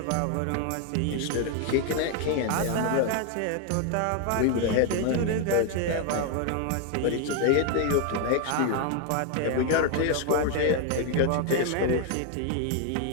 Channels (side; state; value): both; different; correlation 0.01